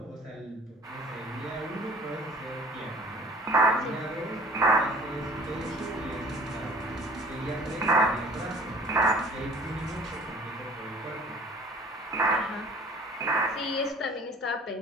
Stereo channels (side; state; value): both; normal; correlation 0.48